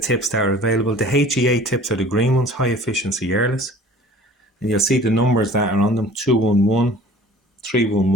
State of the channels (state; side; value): normal; both; correlation 0.47